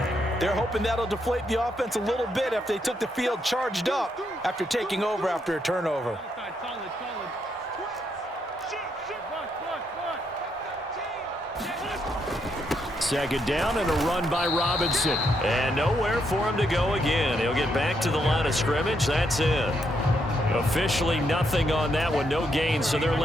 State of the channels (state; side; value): normal; both; correlation 0.77